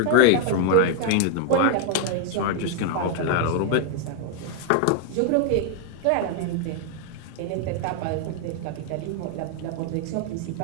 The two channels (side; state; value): both; different; correlation 0.00